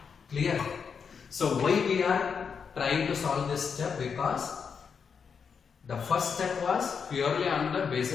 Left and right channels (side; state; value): right; quieter; 6.2 dB